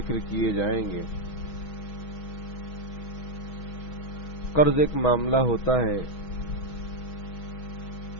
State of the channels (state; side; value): late; right; 6.3 ms